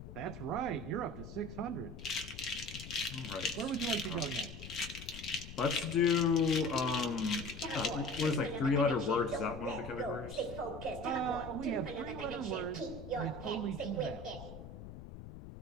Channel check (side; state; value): left; noise; rumble, 12 dB below the sound